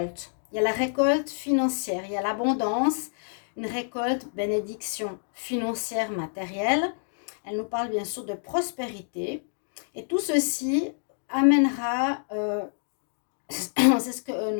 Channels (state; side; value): silent; right; digital silence